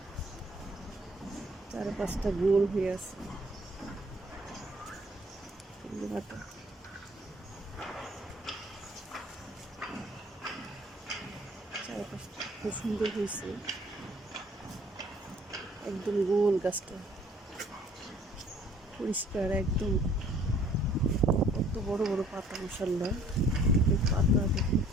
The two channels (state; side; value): normal; both; correlation 0.57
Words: চারপাশটা গোল হয়ে আছে পাতা। চারপাশটা খুব সুন্দর হয়েছে, একদম গোল, গাছটা পরিষ্কার একদম। কত বড় বড় পাতা মাশাআল্লাহ, পাতা দেখুন